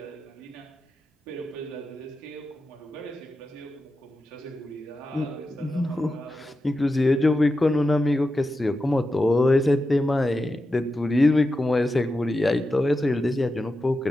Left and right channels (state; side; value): normal; both; correlation 0.90